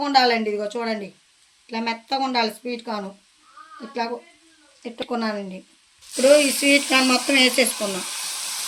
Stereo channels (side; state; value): both; identical; correlation 1.00